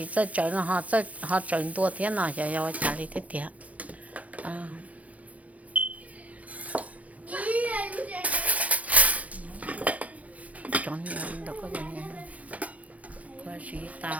这整họ整多天了要家里的点啊整年的个人我是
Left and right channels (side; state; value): left; late; 0.069 ms